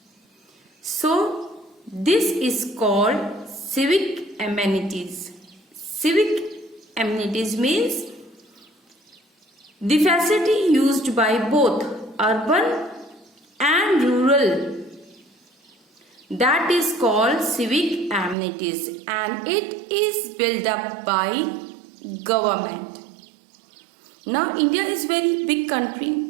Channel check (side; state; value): left; drops out; at 18.4 s